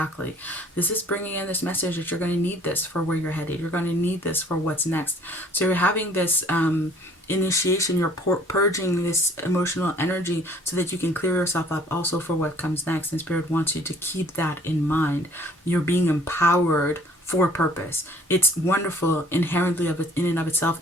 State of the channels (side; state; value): both; normal; correlation 0.55